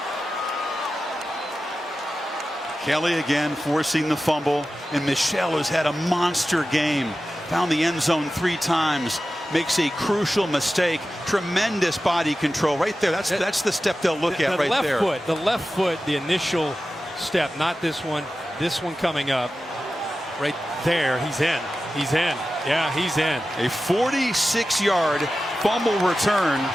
Kelly again forcing the fumble, and Michelle has had a monster game. Found the end zone 3 times, makes a crucial mistake. Tremendous body control right there. That's the step they'll look at right there. The left foot, the initial step, not this one. This one coming up. Right there, he's in. He's in. Yeah, he's in. A 46-yard fumble return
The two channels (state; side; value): normal; both; correlation 0.94